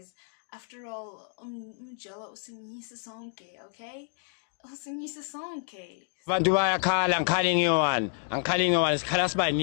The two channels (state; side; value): silent; right; digital silence